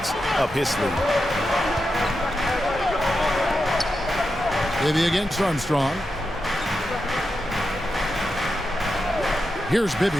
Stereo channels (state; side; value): normal; both; correlation 0.88